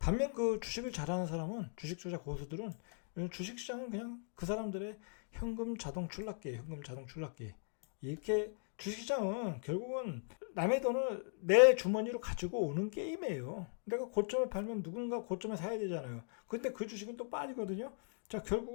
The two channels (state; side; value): silent; right; 52 dB below the other